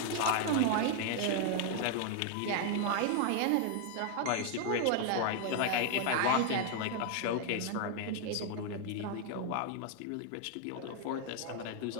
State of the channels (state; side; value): different; both; correlation 0.00